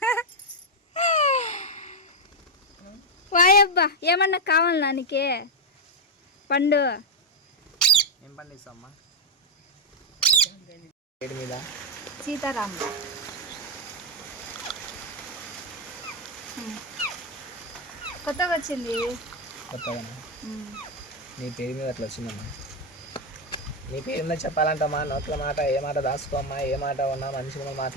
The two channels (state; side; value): normal; both; correlation 0.02